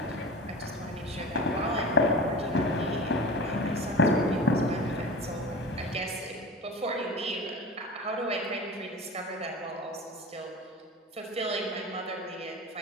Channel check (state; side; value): normal; both; correlation 0.33